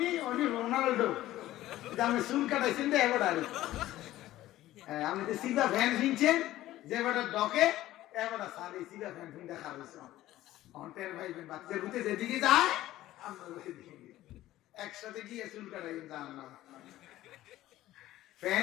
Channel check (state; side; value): quieter; right; 15.1 dB